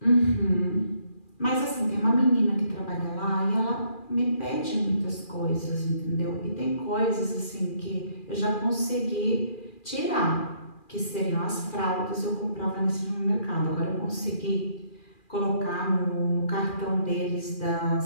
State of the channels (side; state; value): right; late; 2.4 ms